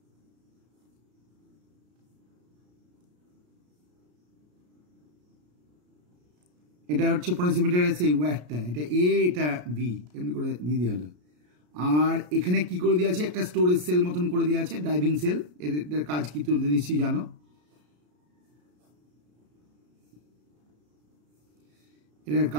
এটা হচ্ছে পোটেনশিওমিটারের সেই ওয়্যারটা, এটা এ এটা বি, এমনি করে দিয়ে দেওয়া হলো। আর এখানে কি করে দেওয়া আছে, একটা স্টোরেজ সেল মতন করে দেওয়া আছে, ড্রাইভিং সেল। এটার কাজ কি তুমি নিশ্চয়ই জানো, এটার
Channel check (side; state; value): left; late; 33 ms